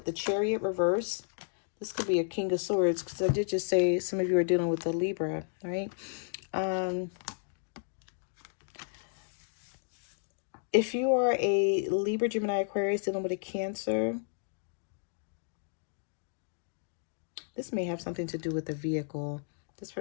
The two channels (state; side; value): silent; right; digital silence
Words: the Chariot reverse. This could be a King of Swords, because I did just say some of you are dealing with a Libra, right? If you are a Libra, Gemini, Aquarius dealing with a Cancer, this may have something to do with the vehicle. This